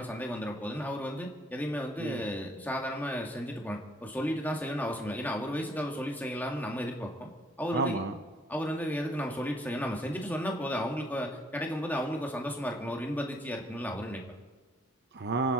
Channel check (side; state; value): both; normal; correlation 0.65